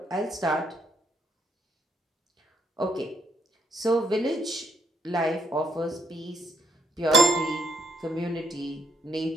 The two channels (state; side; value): normal; both; correlation 0.70